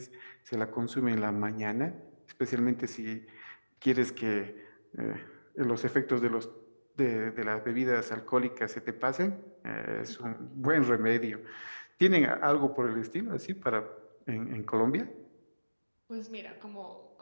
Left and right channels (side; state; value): both; inverted; correlation -1.00